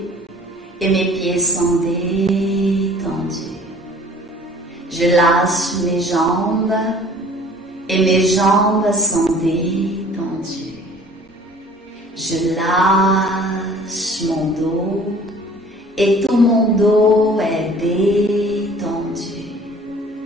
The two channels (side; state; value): both; normal; correlation 0.50